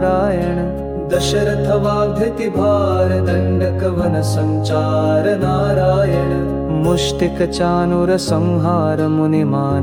दशरथ वाग्धति भार दंडक वन संचार नारायण मुष्टिक चानुर संहार मुनि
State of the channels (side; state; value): both; identical; correlation 1.00